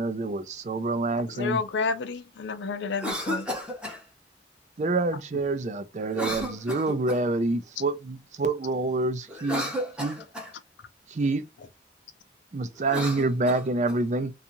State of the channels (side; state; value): both; normal; correlation 0.33